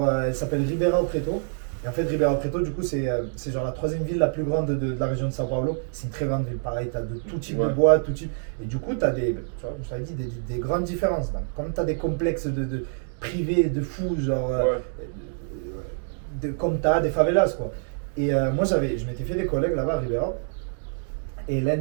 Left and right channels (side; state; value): left; silent; digital silence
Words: Elle s'appelle Ribeirão Preto. Et en fait, Ribeirão Preto, du coup, c'est genre la 3e ville la plus grande de la région de São Paulo. C'est une très grande ville. Pareil, tu as de tout type de bois, tout type. Et du coup, tu as des, tu vois, je t'avais dit, des grandes différences. Donc, comme tu as des complexes de privés, de fous, genre. Comme tu as des favelas, quoi. Et moi, je m'étais fait des collègues là-bas à Ribeirão. Et l'un